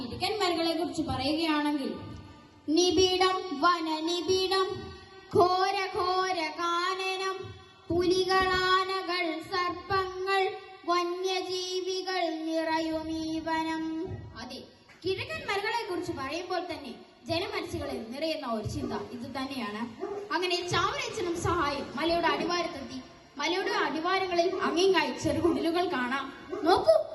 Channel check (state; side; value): identical; both; correlation 1.00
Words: മലകളെ കുറിച്ച് പറയുകയാണെങ്കിൽ, നിബിഡം വനനിബിഡം, ഘോര ഘോര കാനനം, പുലികളാനകൾ സർപ്പങ്ങൾ വന്യജീവികൾ നിറയുമീ വനം. അതെ, കിഴക്കൻ മലകളെ കുറിച്ച് പറയുമ്പോൾ തന്നെ ജനമനസ്സുകളിൽ നിറയുന്ന ഒരു ചിന്ത ഇത് തന്നെയാണ്. അങ്ങനെ ചാവറയച്ചനും സഹായം മലയുടെ അടിവാരത്തെത്തി. മലയുടെ അടിവാരങ്ങളിൽ അങ്ങിങ്ങായി ചെറുകുടിലുകൾ കാണാം. നോക്കൂ,